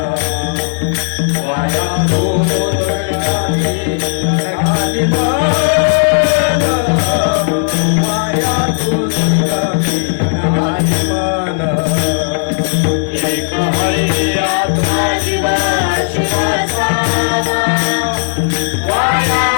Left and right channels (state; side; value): silent; right; digital silence